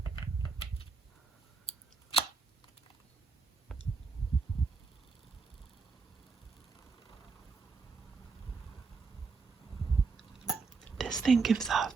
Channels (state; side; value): quieter; left; 4.6 dB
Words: This thing gives off